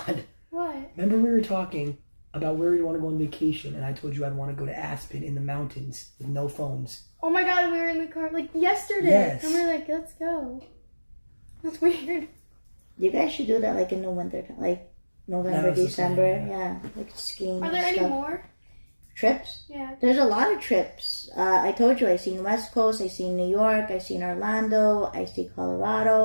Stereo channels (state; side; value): inverted; both; correlation -1.00